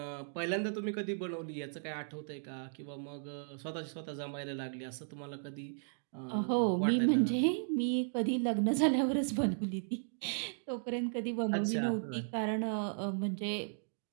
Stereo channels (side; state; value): left; silent; digital silence